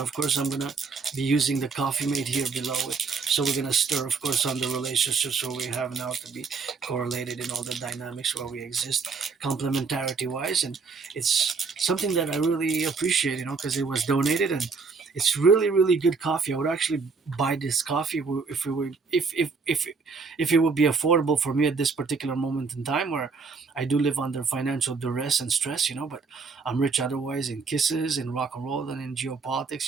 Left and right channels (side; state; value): left; quieter; 4.7 dB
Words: of course I'm gonna be using the coffee mate here below it. So we're gonna stir, of course, on the relationships where we have now to be correlated in all the dynamics where we exist, complementarity wise, and it's something that I really appreciate, because it was donated, and it's really, really good coffee. I would actually buy this coffee if it were if it would be affordable for me at this particular moment in time where I do live under financial duress and stress, but I'm rich otherwise in kisses, in rock and roll, and in